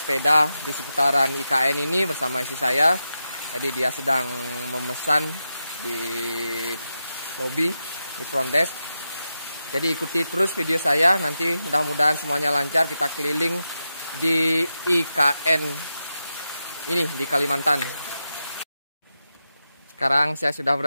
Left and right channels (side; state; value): both; inverted; correlation -0.89